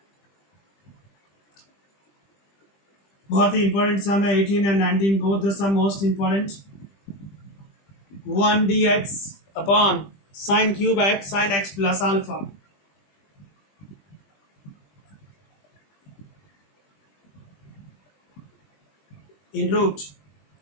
बहुत ही इंपॉर्टेंट सम है. 18 and 19 both the sum most important. 1 dx upon sine cube x sine x plus alpha. In root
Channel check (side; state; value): right; late; 20 ms